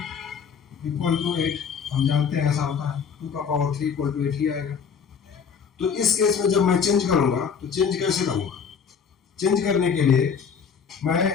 इक्वल टू 8, हम जानते हैं ऐसा होता है, 2 का पावर 3 इक्वल टू 8 ही आएगा। तो इस केस में जब मैं चेंज करूंगा तो चेंज कैसे करूंगा, चेंज करने के लिए मैं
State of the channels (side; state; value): right; quieter; 6.6 dB